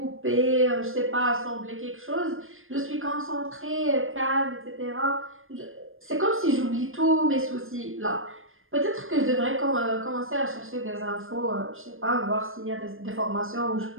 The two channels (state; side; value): late; left; 0.60 ms